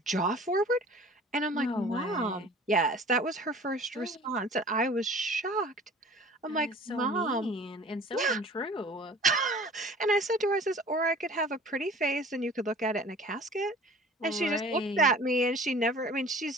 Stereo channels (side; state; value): both; normal; correlation 0.45